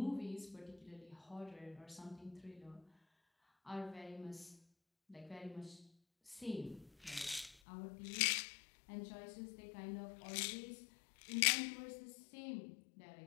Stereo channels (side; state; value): right; drops out; at 7.6 s